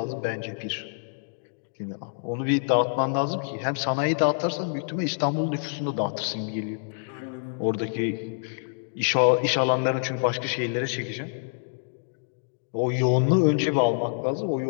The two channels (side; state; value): right; silent; digital silence